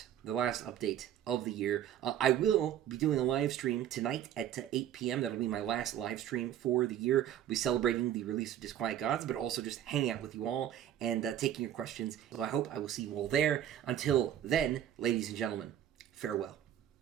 update of the year. I will be doing a live stream tonight at 8 p.m. That'll be my last live stream for the year. We'll be celebrating the release of Disquiet Gods, but also just hanging out with you all and taking your questions. So I hope I will see you all there. Until then, ladies and gentlemen, farewell.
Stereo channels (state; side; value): quieter; left; 10.8 dB